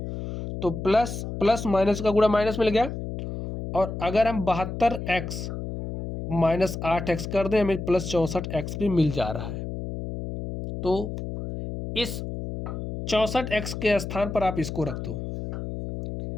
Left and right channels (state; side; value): noise; left; hum, 6 dB below the sound